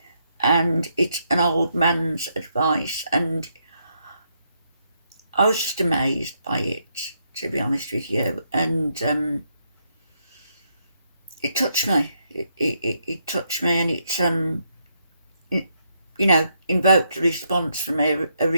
and it's an old man's advice, and I was just amazed by it, to be honest with you, and it touched me. It touched me, and it invoked a response from a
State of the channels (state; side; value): inverted; both; correlation -0.77